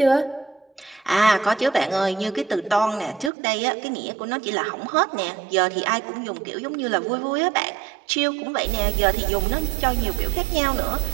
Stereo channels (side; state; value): left; drops out; at 3.3 s